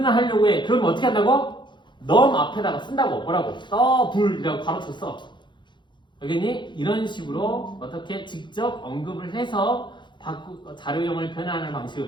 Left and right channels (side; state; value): right; late; 0.23 ms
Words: 해. 그러면 어떻게 한다고? 넘 앞에다가 쓴다고. 뭐라고? 더블이라고 바로 쳤어. 알겠니? 이런 식으로 어떻게 직접 언급을 해서 자료형을 변환하는 방식을